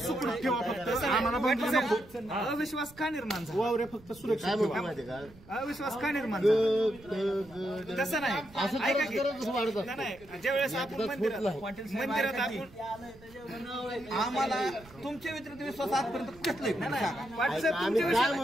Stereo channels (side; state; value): right; noise; rumble, 22 dB below the sound